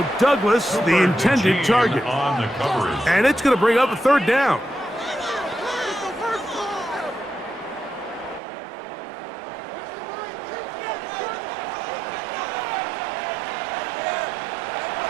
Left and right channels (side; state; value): left; drops out; at 8.4 s